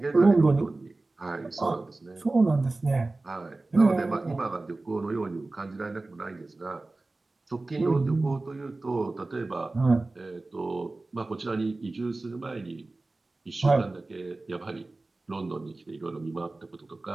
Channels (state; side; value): quieter; left; 3.2 dB